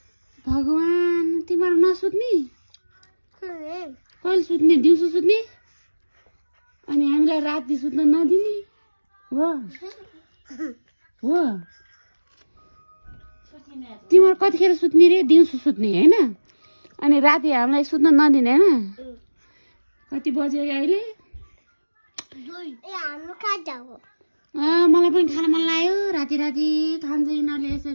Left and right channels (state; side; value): inverted; both; correlation -1.00